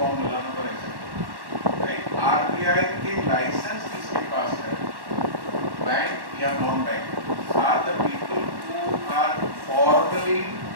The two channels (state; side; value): late; left; 1.1 ms